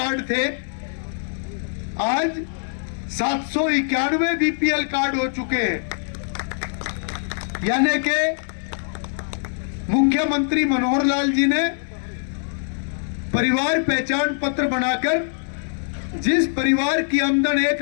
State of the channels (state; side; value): silent; right; digital silence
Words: थे, आज 791 बीपीएल कार्ड हो चुके हैं। यानी कि मुख्यमंत्री मनोहर लाल जी ने परिवार पहचान पत्र बनाकर जिस परिवार की आमदन